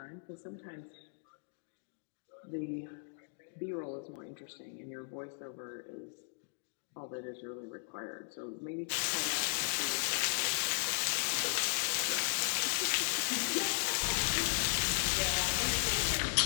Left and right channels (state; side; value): silent; right; digital silence